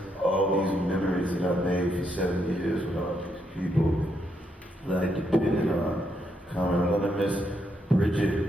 all these memories that I've made for 7 years with all these people that I depended on coming. I'm going to miss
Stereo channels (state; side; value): normal; both; correlation 0.78